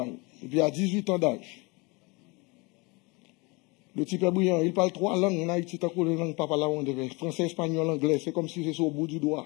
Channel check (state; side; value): quieter; right; 27.3 dB